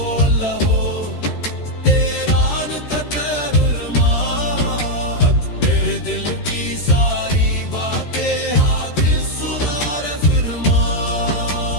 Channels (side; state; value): right; late; 13 ms